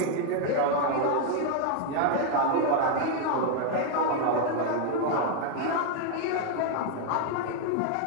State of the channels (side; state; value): both; different; correlation 0.00